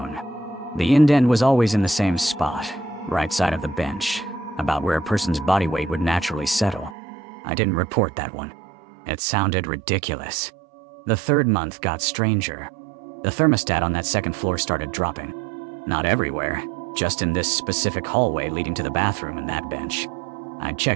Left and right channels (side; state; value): left; drops out; at 7.0 s